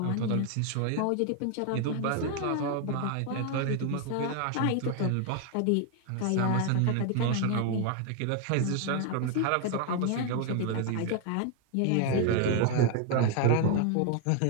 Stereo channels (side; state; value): both; different; correlation 0.01